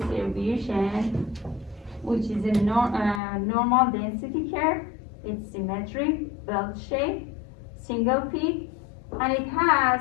which is a normal density curve. It's symmetric, bell shape, single peak, and it has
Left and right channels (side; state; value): right; drops out; at 3.2 s